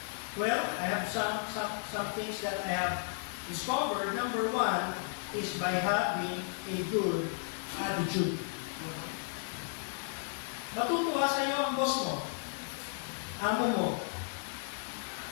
Well, I have some things that I have discovered. Number 1 is by having a good attitude. Matutuwa sa iyo ang boss mo, amo mo,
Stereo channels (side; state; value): right; silent; 55 dB below the other